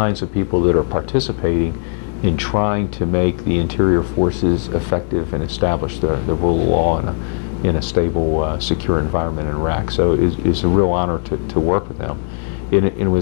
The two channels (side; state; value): right; silent; digital silence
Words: of people that are participating in trying to make the interior forces effective and establish the rule of law in a stable, secure environment in Iraq. So it's a real honor to work with them. It